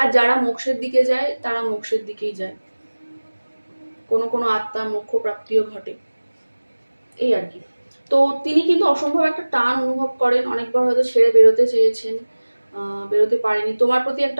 যারা মোক্ষের দিকে যায় তারা মোক্ষের দিকেই যায়, কোনো কোনো আত্মা মোক্ষ প্রাপ্তিও ঘটে, এই আর কি। তো তিনি কিন্তু অসম্ভব একটা টান অনুভব করেন, অনেকবার হয়তো ছেড়ে বেরোতে চেয়েছেন, বেরোতে পারেনি। তোমার প্রতি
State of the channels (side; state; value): both; inverted; correlation -1.00